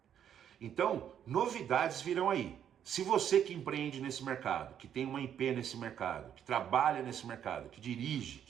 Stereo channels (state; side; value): quieter; left; 9.4 dB